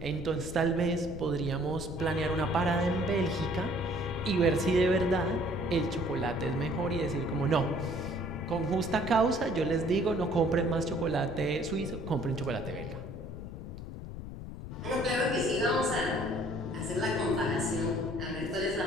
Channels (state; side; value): noise; left; rumble, 10 dB below the sound